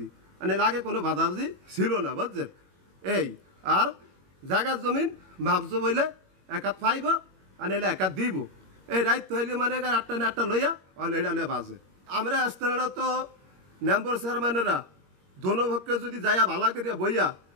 মানে আগে কোনো বাজাবাজি ছিল না বুঝছেন। এই আর জায়গার জমিন মাপজো বইলে একাত পাইব আর এলে একাত দিব। এই রাইত হইলে মানে এখানে 8টা না 8টা লইয়া আর এটা বাজে। আমরা স্থানীয়রা তো মেম্বার চেয়ারম্যানেরা দোনোপক্ষে যদি যাইয়া ভালা করিয়া বইয়া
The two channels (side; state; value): left; late; 21 ms